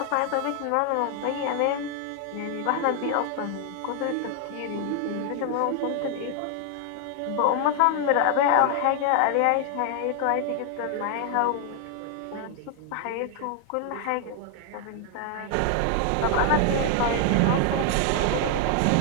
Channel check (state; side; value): different; both; correlation 0.00